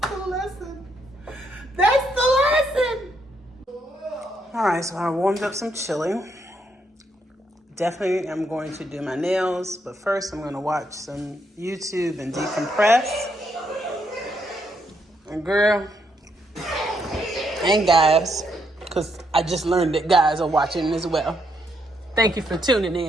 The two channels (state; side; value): normal; both; correlation 0.76